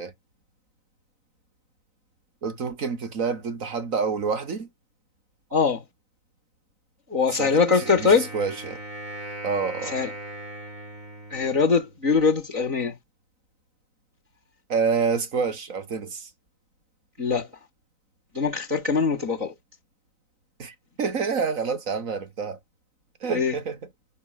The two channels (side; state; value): left; late; 3.9 ms